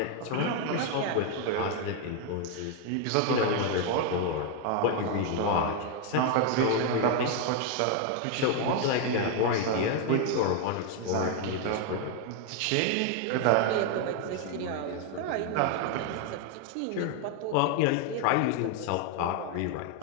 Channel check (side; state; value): both; different; correlation 0.01